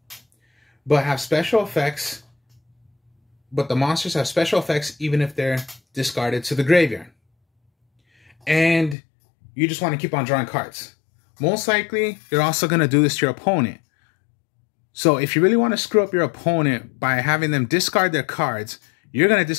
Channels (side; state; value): right; drops out; at 9.0 s